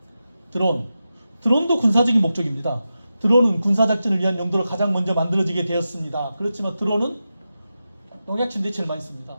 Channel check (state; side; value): inverted; both; correlation -0.91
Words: 드론도 군사적인 목적입니다. 드론은 군사작전을 위한 용도로 가장 먼저 만들어지게 되었습니다. 그렇지만 드론은 농약 침대에 제일 많이 씁니다.